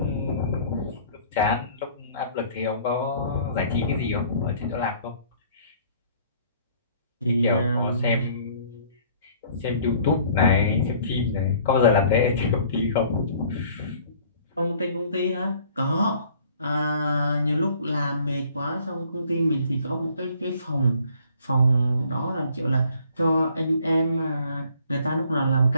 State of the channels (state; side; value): inverted; both; correlation -0.56